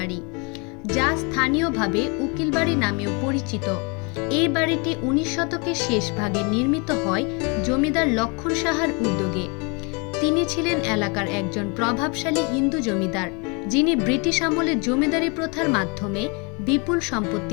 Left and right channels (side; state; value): right; quieter; 32.1 dB